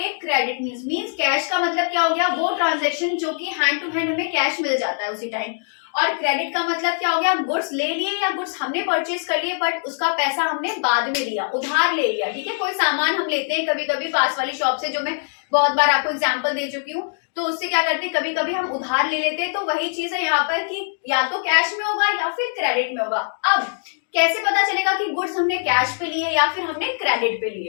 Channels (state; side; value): silent; right; 64 dB below the other